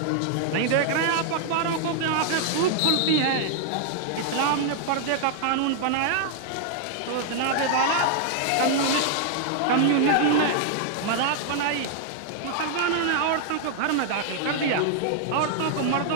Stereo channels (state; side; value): different; both; correlation 0.00